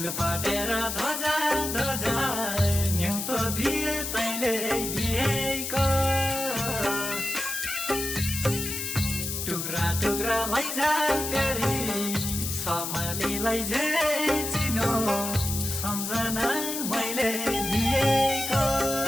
फाटेर धजा धजा न्युतो दिए तैले बिहेको टुक्रा टुक्रा लैजा प्यारी सम्हालीलाई जे चिनो सम्झना मैले दिएको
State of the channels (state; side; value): noise; left; hiss, 4 dB below the sound